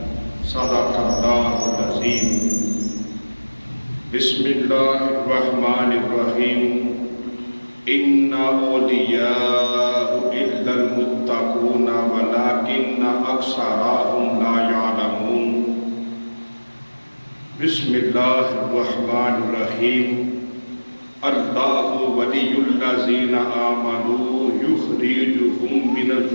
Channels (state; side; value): inverted; both; correlation -1.00